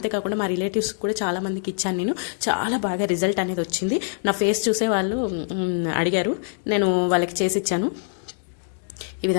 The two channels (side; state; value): right; silent; digital silence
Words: మా రిలేటివ్స్ కూడా చాలా మందికి ఇచ్చాను. నేను చాలా బాగా రిజల్ట్ అనేది వచ్చింది. నా ఫేస్ చూసే వాళ్ళు అడిగారు, నేను వాళ్ళకి చేసి ఇచ్చాను. ఈ